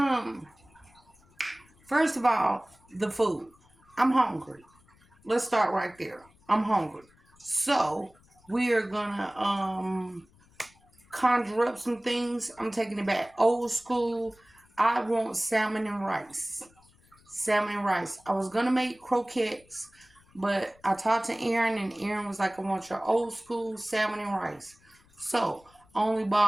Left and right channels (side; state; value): left; noise; rumble, 30 dB below the sound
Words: first of all, the food. I'm hungry. Let's start right there. I'm hungry. So, we are gonna, conjure up some things. I'm taking it back old school. I want salmon and rice. Salmon and rice. I was gonna make croquettes, but I talked to Aaron, and Aaron was like, I want your old school salmon and rice. So I only